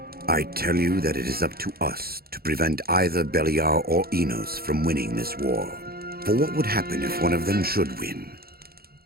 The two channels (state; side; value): late; left; 0.44 ms